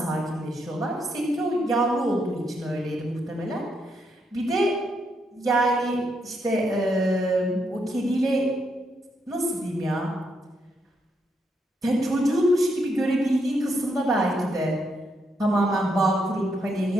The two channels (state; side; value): normal; both; correlation 0.78